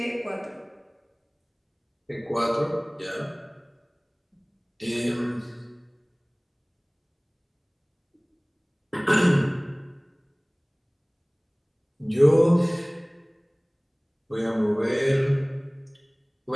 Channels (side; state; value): both; identical; correlation 1.00